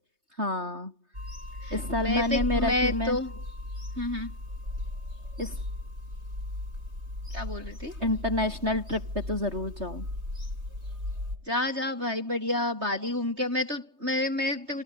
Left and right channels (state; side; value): late; left; 3.2 ms